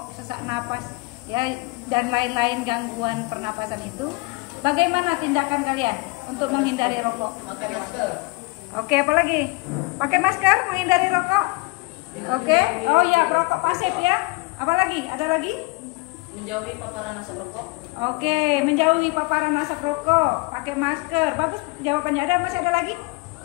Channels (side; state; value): right; quieter; 26.8 dB